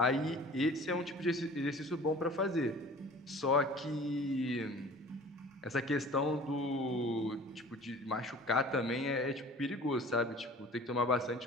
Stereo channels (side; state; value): both; normal; correlation 0.45